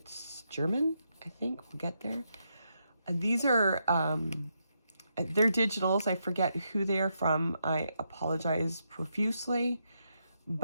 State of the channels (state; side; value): inverted; both; correlation -0.81